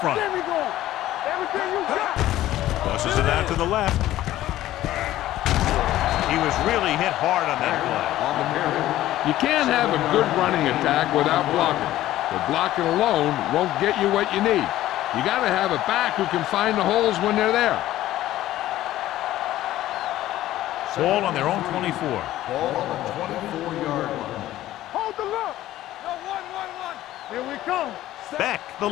There we go. Everything you got. Tosses it out to the left. He was really hit hard on that play. On the carry. You can't have a good running attack without blocking. But blocking alone won't get you what you need. You got to have a back who can find the holes when they're there. Ball on their own 24. Ball on the 24-yard line. Hold the look. No, 1. Here we come. Beck, the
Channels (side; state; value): right; quieter; 14.5 dB